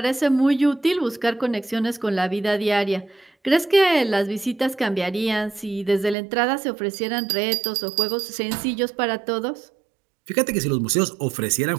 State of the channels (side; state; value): left; drops out; at 6.2 s